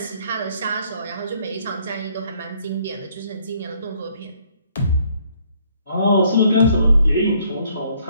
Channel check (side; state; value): both; inverted; correlation -0.65